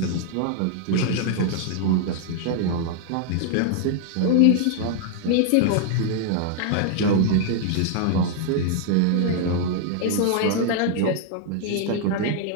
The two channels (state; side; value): different; both; correlation 0.00